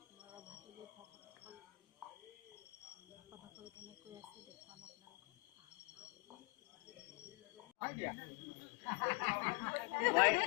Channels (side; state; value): right; quieter; 26.6 dB